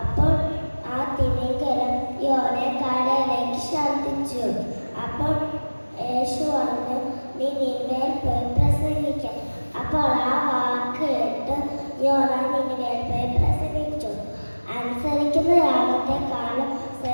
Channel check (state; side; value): inverted; both; correlation -1.00